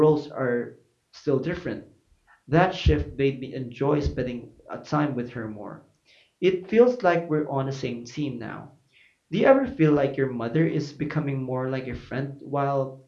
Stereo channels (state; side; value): identical; both; correlation 1.00